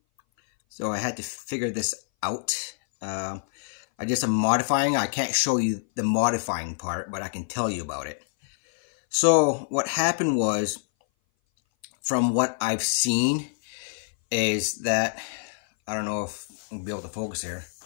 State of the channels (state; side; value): silent; right; 59 dB below the other